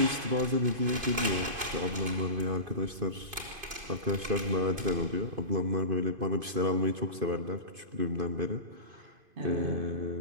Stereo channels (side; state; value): left; late; 2.5 ms